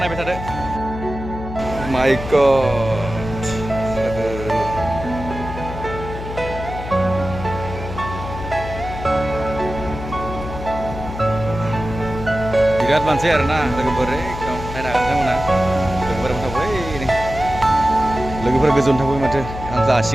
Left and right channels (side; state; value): left; noise; hum, 8 dB below the sound